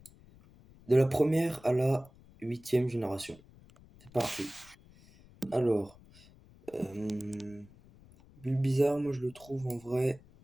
de la première à la huitième génération. C'est parti. Alors, Bulbizarre, moi je le trouve en vrai,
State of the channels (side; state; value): left; noise; rumble, 24 dB below the sound